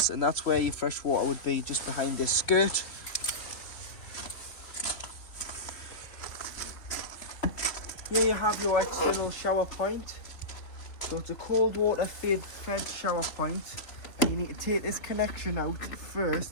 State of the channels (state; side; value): late; right; 3.3 ms